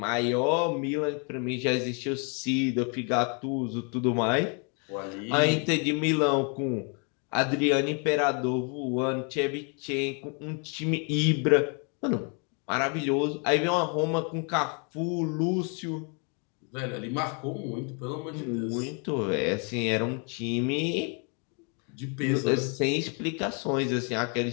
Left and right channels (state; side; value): quieter; right; 36.8 dB